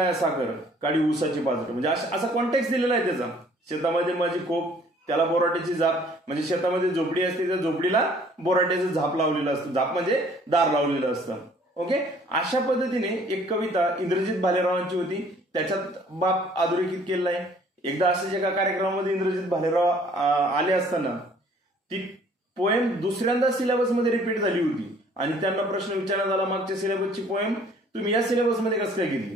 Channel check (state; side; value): normal; both; correlation 0.57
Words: साखर, काडी ऊसाची पाजट. म्हणजे असा कॉन्टेक्स्ट दिलेला आहे त्याचा. शेतामध्ये माझी खोप, त्याला बोराट्याची झाप. म्हणजे शेतामध्ये झोपडी असते, त्या झोपडीला बोराट्याचं झाप लावलेलं असतं. झाप म्हणजे दार लावलेलं असतं. ओके, अशा पद्धतीने एक कविता इंद्रजित भालेरावांची होती. त्याच्यात बाप अधोरेखित केलेला आहे. एकदा असेच एका कार्यक्रमामध्ये इंद्रजित भालेराव आले असताना ती पोएम दुसऱ्यांदा सिलेबसमध्ये रिपीट झाली होती आणि त्यांना प्रश्न विचारण्यात आला, मागच्या सिलेबसची पोएम तुम्ही या सिलेबसमध्ये कसं काय